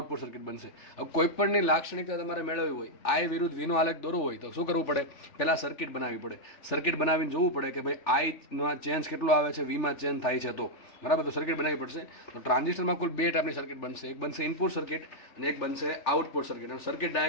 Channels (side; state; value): right; late; 3.4 ms